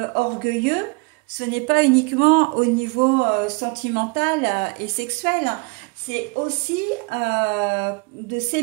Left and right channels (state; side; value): quieter; left; 29.4 dB